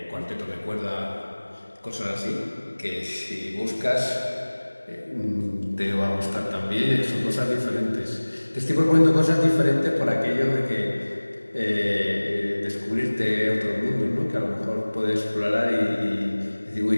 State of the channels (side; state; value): both; inverted; correlation -1.00